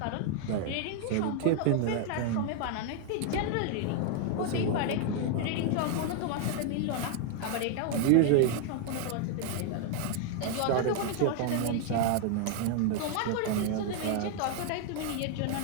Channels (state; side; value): different; both; correlation 0.00